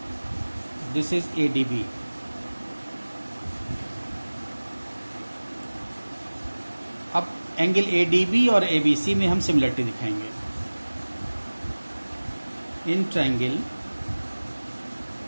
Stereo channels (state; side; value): inverted; both; correlation -1.00